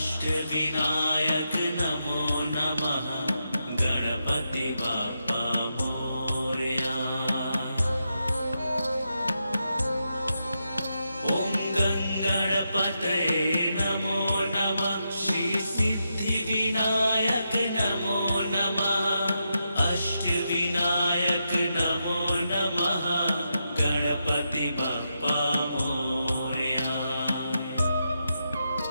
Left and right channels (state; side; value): inverted; both; correlation -0.85